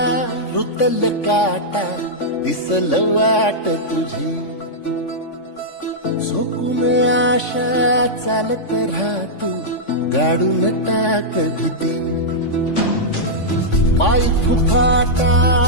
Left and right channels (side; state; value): right; late; 3.5 ms